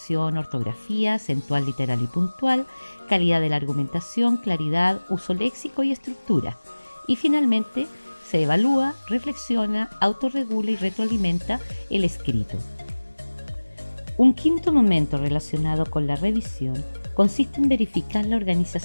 ortografía, acentual, literal y puntual, calidad de la argumentación, claridad, uso léxico y estructura. Y finalmente, se evalúa, reflexiona, autorregula y retroalimenta el escrito. Un quinto momento relacionado con la revisión consiste en verificar la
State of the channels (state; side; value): inverted; both; correlation -1.00